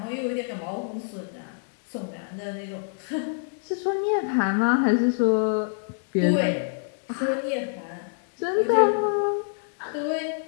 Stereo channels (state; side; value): silent; right; 61 dB below the other